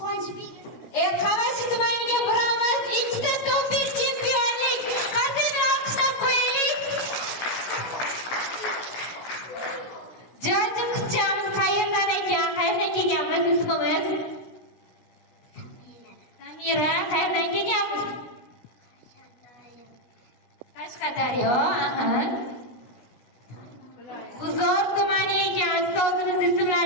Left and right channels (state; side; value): late; right; 17 ms